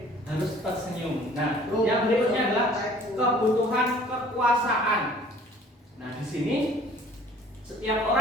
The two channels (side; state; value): both; normal; correlation 0.52